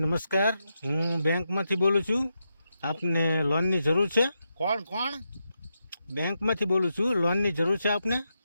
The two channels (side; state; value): both; inverted; correlation -0.85